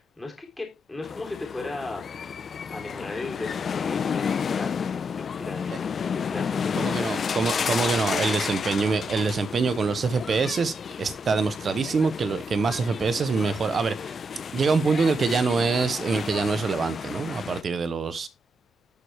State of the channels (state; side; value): normal; both; correlation 0.82